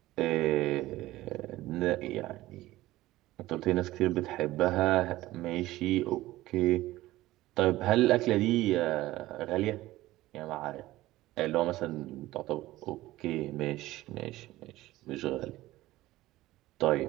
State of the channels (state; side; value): quieter; left; 16.9 dB